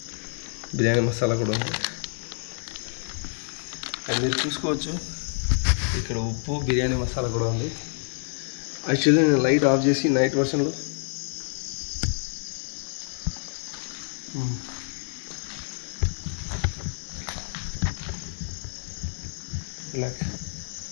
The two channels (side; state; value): right; silent; 60 dB below the other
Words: బిర్యానీ మసాలా కూడా ఉంది. అండ్ మీరు చూసుకోవచ్చు ఇక్కడ ఉప్పు, బిర్యానీ మసాలా కూడా ఉంది. యాక్చువల్లీ నేను లైట్ ఆఫ్ చేసి నైట్ వర్షన్లో